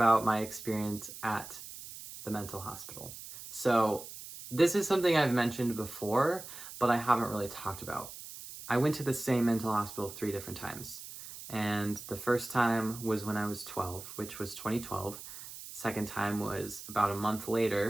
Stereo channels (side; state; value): right; noise; hiss, 13 dB below the sound